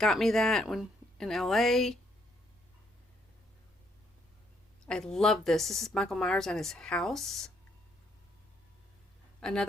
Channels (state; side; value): normal; both; correlation 0.71